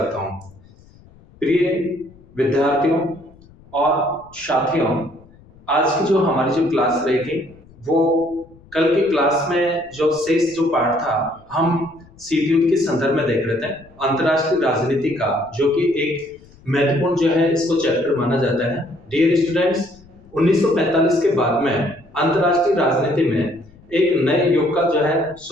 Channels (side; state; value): left; noise; rumble, 26 dB below the sound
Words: हूं। प्रिय विद्यार्थियों और साथियों, आज की जो हमारी जो क्लास रहेगी वो कल की क्लास में जो शेष जो पार्ट था हम सीटीयूट के संदर्भ में देख रहे थे। अंतर्राष्ट्रीय राजनीति का जो कि एक महत्वपूर्ण जो है इसको चैप्टर माना जाता है। डियर स्टूडेंट्स, 1945 के बाद में अंतर्राष्ट्रीय राजनीति में एक नए युग का जो है